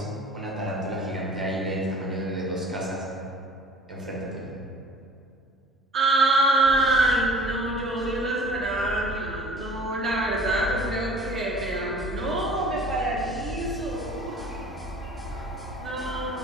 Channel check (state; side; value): normal; both; correlation 0.46